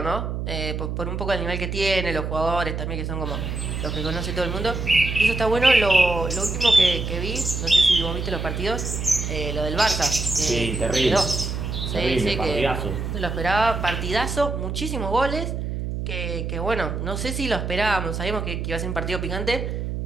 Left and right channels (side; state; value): right; noise; hum, 3 dB below the sound